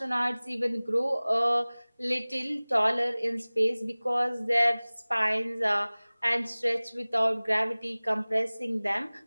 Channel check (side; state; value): both; inverted; correlation -0.99